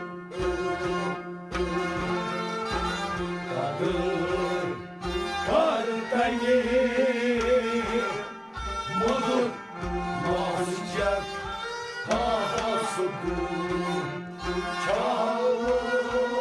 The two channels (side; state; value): both; identical; correlation 1.00